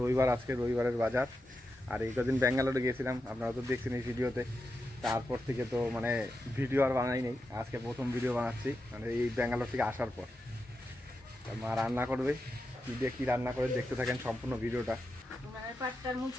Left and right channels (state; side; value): normal; both; correlation 0.88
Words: আজকে রবিবারের বাজার। আর এই কদিন ব্যাঙ্গালোরে গিয়েছিলাম, আপনারা তো দেখছেন এই ভিডিওতে। তারপর থেকে তো মানে ভিডিও আর বানাই নেই, আজকে প্রথম ভিডিও বানাচ্ছি মানে এই ব্যাঙ্গালোর থেকে আসার পর। মা রান্না করবে, কী দিয়ে কী রান্না করে দেখতে থাকেন সম্পূর্ণ ভিডিওটা। উনানের পাটটার